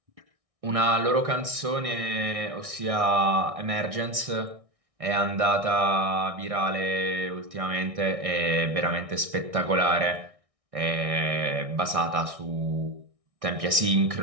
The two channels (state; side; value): late; left; 1.6 ms